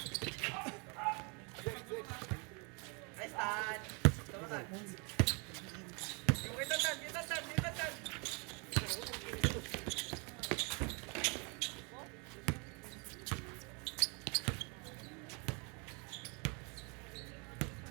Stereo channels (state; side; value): quieter; left; 33.4 dB